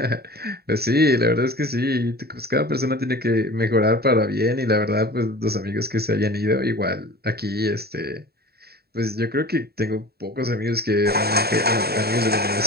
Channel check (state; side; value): late; left; 0.46 ms